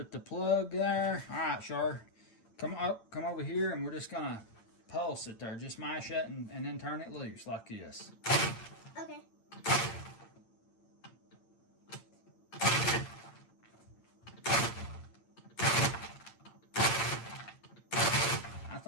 the plug there. All right, Char, come over here, and we're just gonna pulse it there. Just mash it and then turn it loose like this. Okay. I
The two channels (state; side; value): late; right; 8.8 ms